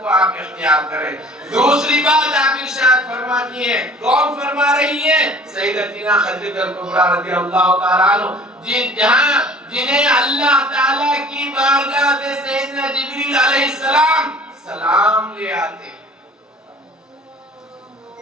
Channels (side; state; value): both; normal; correlation 0.48